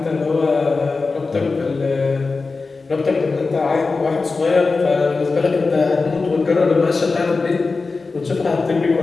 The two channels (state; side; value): quieter; right; 4.0 dB